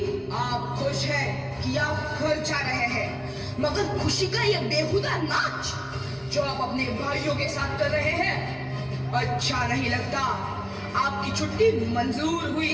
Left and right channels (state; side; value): identical; both; correlation 1.00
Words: आप खुश हैं कि आप घर जा रहे हैं, मगर खुशी का ये बेहुदा नाच जो आप अपने भाइयों के साथ कर रहे हैं अच्छा नहीं लगता। आपकी छुट्टी मंजूर हुई